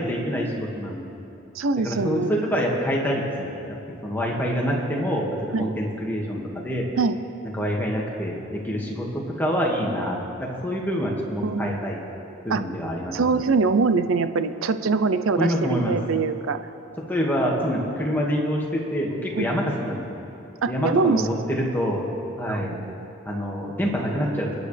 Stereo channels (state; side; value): normal; both; correlation 0.47